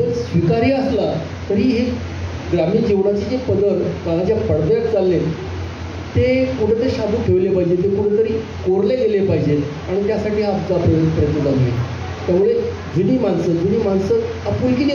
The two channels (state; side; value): identical; both; correlation 1.00